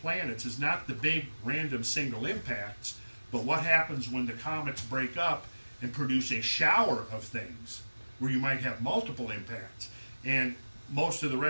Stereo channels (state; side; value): inverted; both; correlation -1.00